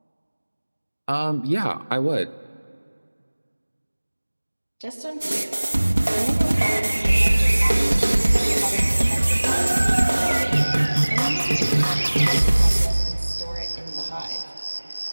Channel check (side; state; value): both; inverted; correlation -1.00